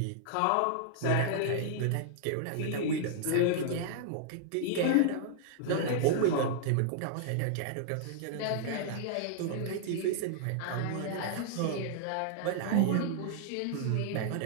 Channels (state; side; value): different; both; correlation -0.01